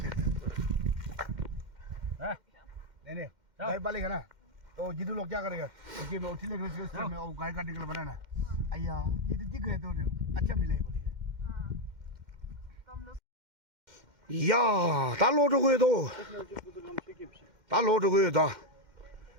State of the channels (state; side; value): late; left; 2.1 ms